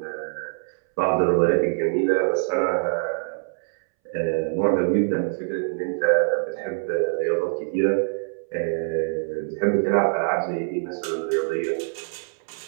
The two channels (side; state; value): left; silent; 62 dB below the other